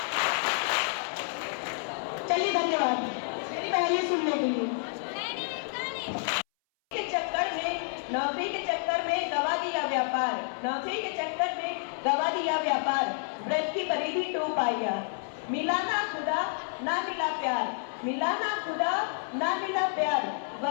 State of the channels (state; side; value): silent; right; 58 dB below the other